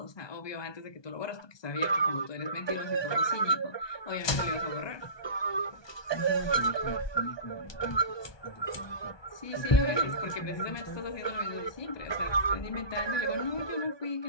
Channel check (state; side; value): late; right; 1.2 ms